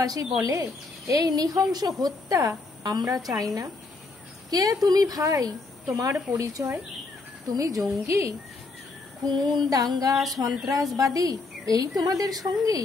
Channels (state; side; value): quieter; right; 3.6 dB